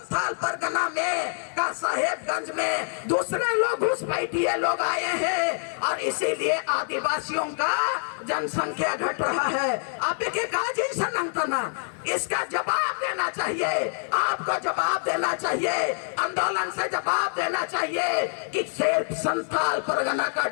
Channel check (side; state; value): right; silent; 61 dB below the other